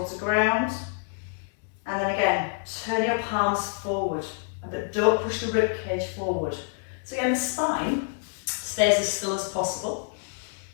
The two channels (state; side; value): silent; right; 58 dB below the other